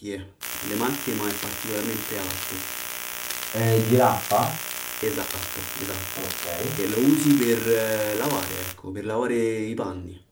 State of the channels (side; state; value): both; identical; correlation 1.00